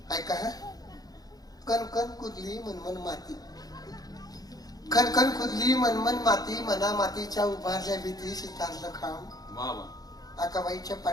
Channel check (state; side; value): late; right; 0.18 ms